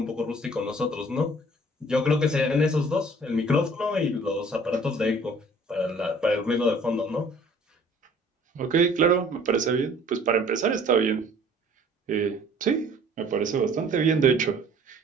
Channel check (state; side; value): normal; both; correlation 0.53